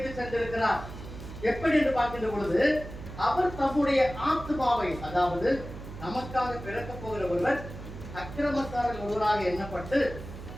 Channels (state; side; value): noise; right; hum, 12 dB below the sound